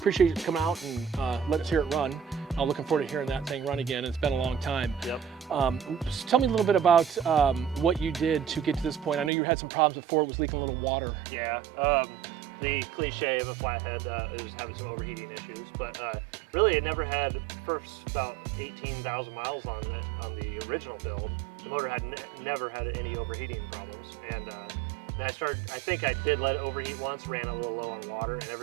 you coming out and let us hear it run. I'm looking forward to hearing that thing run again. It's been a long time. Yep. Just tell me a little bit about what you did to get to this point. I know you had some problems before, it was leaking a little water. Yeah, the cliche of a flathead is having some overheating issues, but really it never had, first about 18,000 miles on it on the original build. The motor had never had any overheating problems, and I think I did let it overheat once, ran a little low on water, and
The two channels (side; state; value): left; drops out; at 9.3 s